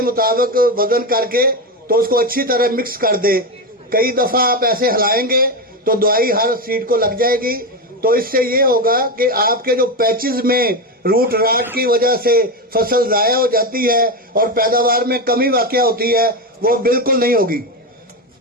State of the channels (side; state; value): both; normal; correlation 0.14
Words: मुताबिक वजन करके तो उसको अच्छी तरह मिक्स कर दे। कई दफा आप ऐसे हिलाएंगे तो दवाई हर सीड को लग जाएगी। तो इससे ये होगा कि आपके जो पैचेस में रूट राट की वजह से फसल जाया हो जाती है और पैदावार में कमी वाक़या होती है, वो बिल्कुल नहीं होगी।